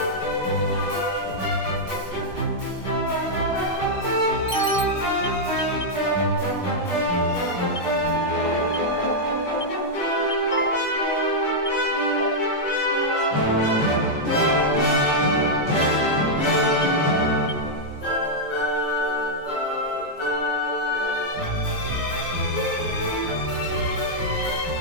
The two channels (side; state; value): right; late; 5.3 ms